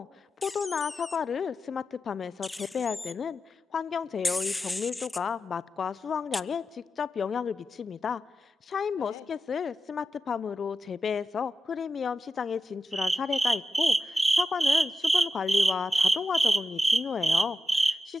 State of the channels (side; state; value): both; normal; correlation 0.91